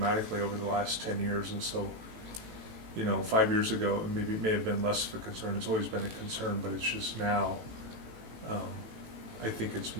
over the last 10 years. And so, 5 years ago, it may have been less of a concern. It's always been a concern, but it's just now, I think it's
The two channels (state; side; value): late; left; 18 ms